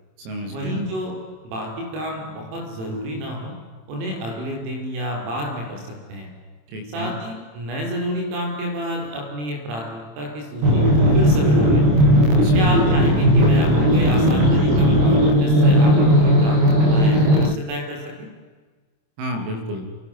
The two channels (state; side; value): late; left; 27 ms